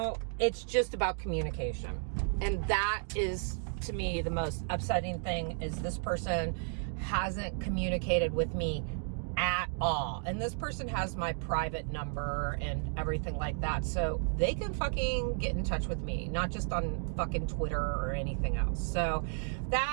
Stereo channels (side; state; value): left; silent; 56 dB below the other